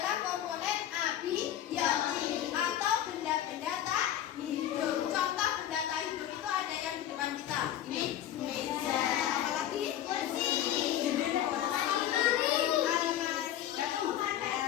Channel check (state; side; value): quieter; right; 11.5 dB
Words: komponen abiotik atau benda-benda tak hidup. Contoh benda tak hidup itu ada yang di depan kita. Ini meja. Apa lagi? Kursi. Almari. Ya,